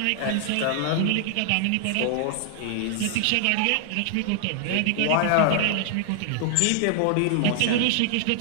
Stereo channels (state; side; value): different; both; correlation -0.01